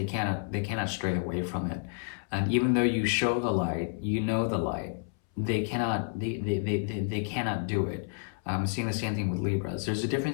cannot stray away from it. And even though you show the light, you know the light, they cannot do it. I'm seeing the same thing with Libras. There's a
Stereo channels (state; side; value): silent; right; 58 dB below the other